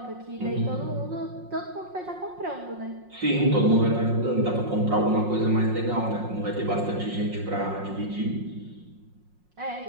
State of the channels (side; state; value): left; late; 5.5 ms